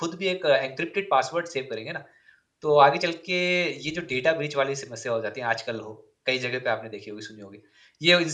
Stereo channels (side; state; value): both; identical; correlation 1.00